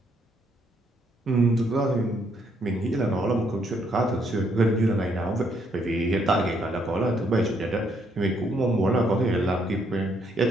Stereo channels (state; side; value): normal; both; correlation 0.72